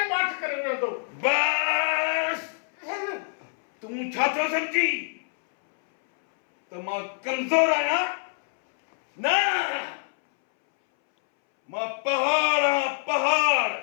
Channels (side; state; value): right; silent; 61 dB below the other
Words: बात करे तो बस तू छाछो समझी तो मां कमजोर आया ना मां पहाड़ हाँ, पहाड़